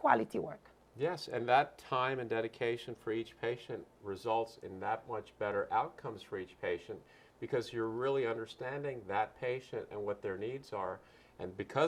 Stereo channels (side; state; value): both; identical; correlation 1.00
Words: work. Yes, and that time and dedication for each patient results in that much better outcomes for each patient, because you're really understanding that patient and what their needs are. And